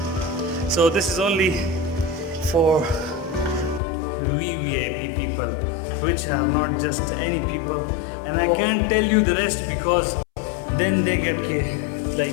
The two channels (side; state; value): right; drops out; at 3.8 s